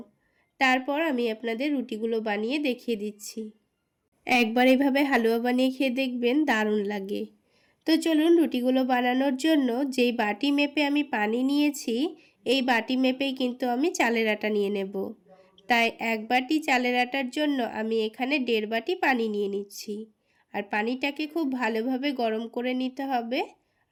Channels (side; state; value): both; identical; correlation 1.00